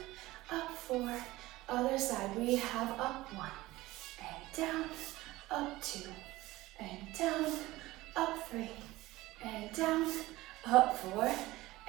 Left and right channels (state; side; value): quieter; left; 18.4 dB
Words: Up. 4. Other side. We have up. 1, and down. Up. 2, and down. Up. 3, and down. Up. 4,